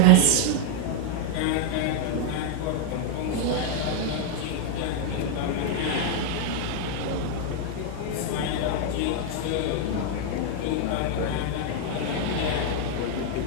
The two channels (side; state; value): both; different; correlation 0.00